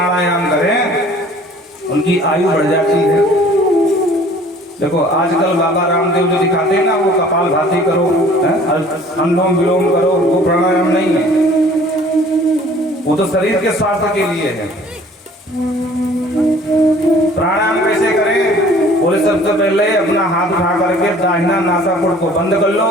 करें उनकी आयु बढ़ जाती है। देखो आजकल बाबा रामदेव जो दिखाते हैं ना, वो कपाल भाती करो, अनुलोम विलोम करो, वो प्राणायाम नहीं है, वो तो शरीर के स्वास्थ्य के लिए है। प्राणायाम कैसे करें? बोले सबसे पहले अपना हाथ उठा करके दाहिना नासापुट को बंद कर लो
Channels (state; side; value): normal; both; correlation 0.52